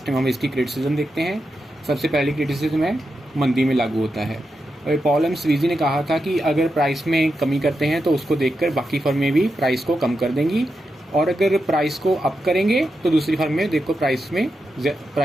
टाइम हम इसकी क्रिटिसिज्म देखते हैं। सबसे पहली क्रिटिसिज्म है मंदी में लागू होता है। और पॉल एम स्वीजी ने कहा था कि अगर प्राइस में कमी करते हैं तो उसको देखकर बाकी फर्में भी प्राइस को कम कर देंगी, और अगर प्राइस को अप करेंगे तो दूसरी फर्में देखो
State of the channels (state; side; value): normal; both; correlation 0.87